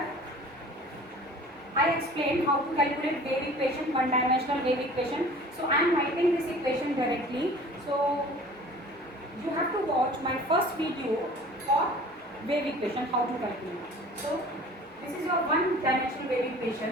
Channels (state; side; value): normal; both; correlation 0.45